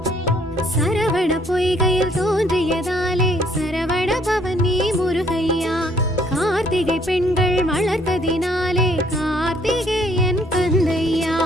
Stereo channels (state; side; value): normal; both; correlation 0.64